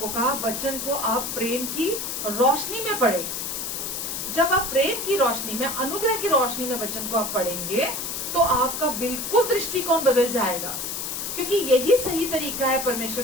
कहा, वचन को आप प्रेम की रोशनी में पढ़े। जब आप प्रेम की रोशनी में, अनुग्रह की रोशनी में वचन को आप पढ़ेंगे तो आपका बिल्कुल दृष्टिकोण बदल जाएगा, क्योंकि यही सही तरीका है परमेश्वर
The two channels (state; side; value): noise; left; hiss, 4 dB below the sound